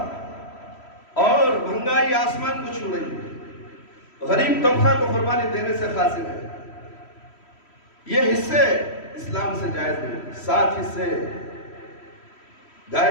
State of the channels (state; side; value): late; right; 3.1 ms